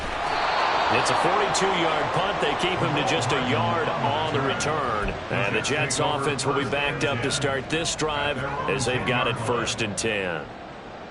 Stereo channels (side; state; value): both; identical; correlation 1.00